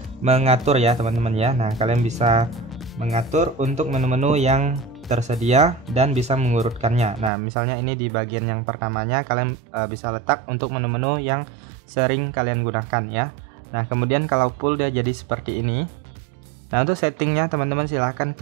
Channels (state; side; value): drops out; left; at 7.3 s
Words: mengatur ya teman-teman ya. Nah, kalian bisa mengatur untuk menu-menu yang tersedia dan bisa mengurutkannya. Nah, misalnya ini di bagian yang pertamanya kalian bisa letak untuk menu-menu yang sering kalian gunakan ya. Nah, kemudian kalau full dia jadi seperti ini. Nah, untuk settingnya teman-teman silahkan